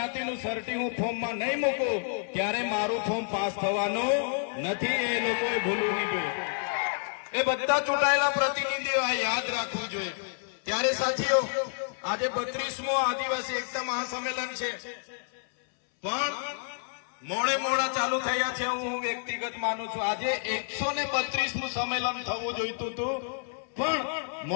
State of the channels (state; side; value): silent; right; 58 dB below the other